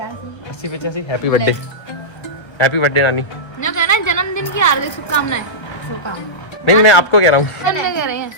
80-85। हैप्पी बर्थडे, हैप्पी बर्थडे नानी। जो कहना है जन्मदिन की हार्दिक शुभकामनाएं। नहीं मैं आपको कह रहा हूँ। कह रहे हैं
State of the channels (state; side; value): late; right; 1.3 ms